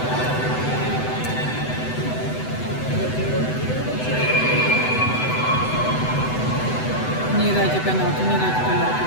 Nedajte penáltu, nedajte penáltu.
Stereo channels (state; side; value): late; right; 7.9 ms